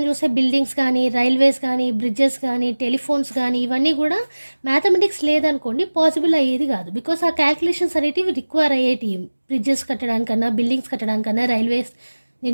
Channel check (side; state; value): both; inverted; correlation -1.00